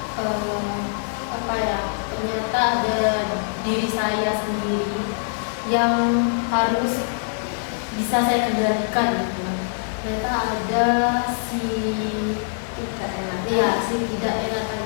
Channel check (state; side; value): silent; right; digital silence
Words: ternyata ada diri saya sendiri yang harus bisa saya kendalikan gitu. Ternyata ada si